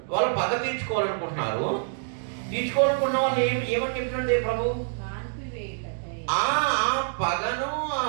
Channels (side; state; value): left; silent; digital silence